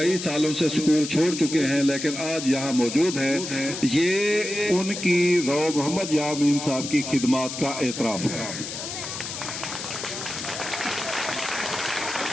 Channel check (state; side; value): noise; left; hiss, 7 dB below the sound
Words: سالوں سے سکول چھوڑ چکے ہیں لیکن آج یہاں موجود ہیں۔ یہ ان کی رو محمد یامین صاحب کی خدمات کا اعتراف ہے۔